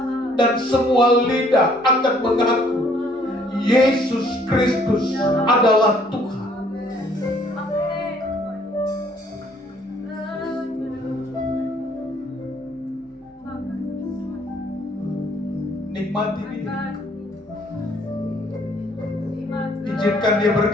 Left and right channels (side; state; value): both; normal; correlation 0.62